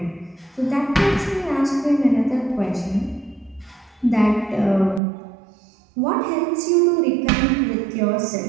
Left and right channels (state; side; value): drops out; left; at 5.0 s